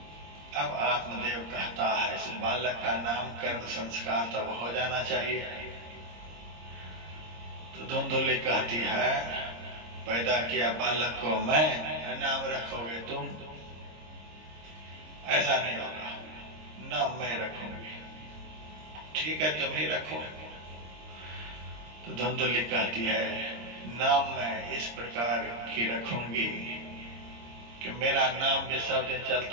अब आत्मदेव कहता है इस बालक का नामकरण संस्कार तब हो जाना चाहिए। तो धुंधुली कहती है पैदा किया बालक को मैं, नाम रखोगे तुम? ऐसा नहीं होगा, नाम मैं रखूंगी। ठीक है तुम ही रखो। तो धुंधुली कहती है नाम मैं इस प्रकार की रखूंगी कि मेरा नाम भी सब दिन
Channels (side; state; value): left; late; 26 ms